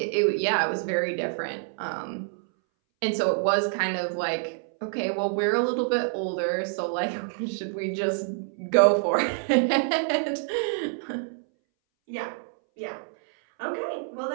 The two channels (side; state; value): left; silent; 60 dB below the other